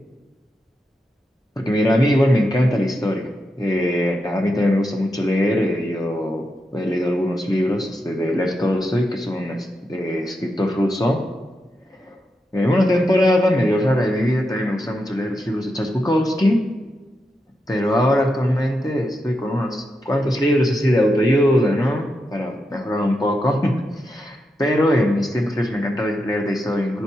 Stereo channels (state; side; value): normal; both; correlation 0.86